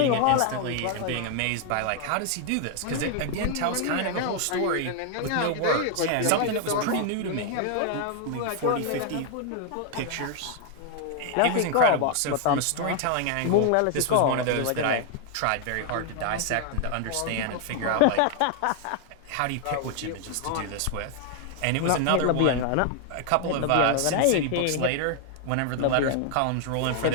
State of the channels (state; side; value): different; both; correlation 0.00